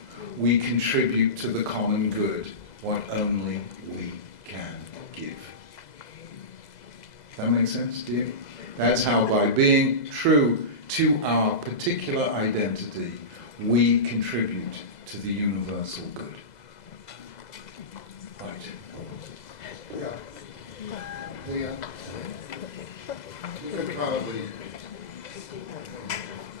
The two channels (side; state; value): right; late; 2.0 ms